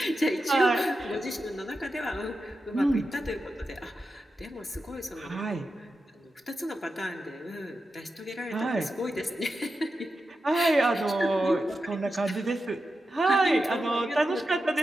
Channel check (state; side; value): normal; both; correlation 0.90